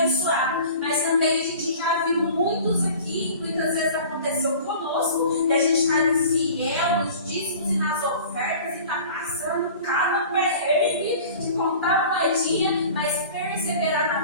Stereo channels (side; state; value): both; inverted; correlation -0.43